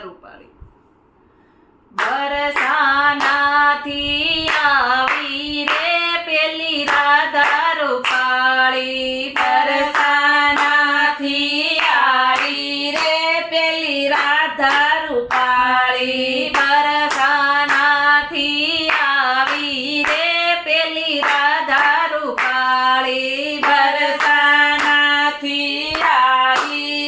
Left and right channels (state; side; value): identical; both; correlation 1.00